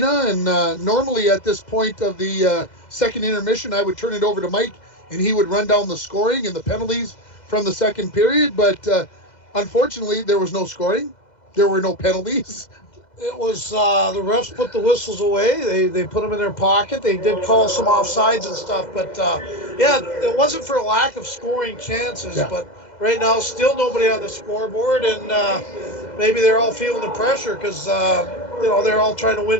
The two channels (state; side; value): late; right; 2.0 ms